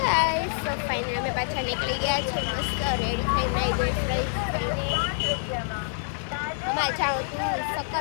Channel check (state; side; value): silent; right; digital silence